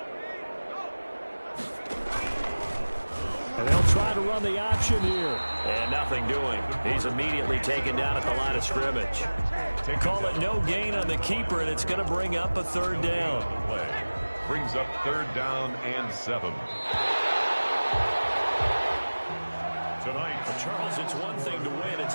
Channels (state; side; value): inverted; both; correlation -1.00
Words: And they'll try to run the option here. And nothing doing. He's immediately taken down at the line of scrimmage. They call it no gain on the keeper, and it's going to bring up a 3rd down. Brings up 3rd down and 7. Tonight, Charles, it's one thing to win. It's